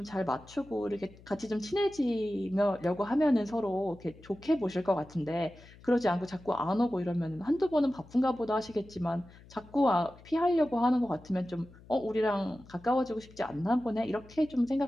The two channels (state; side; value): noise; left; hum, 22 dB below the sound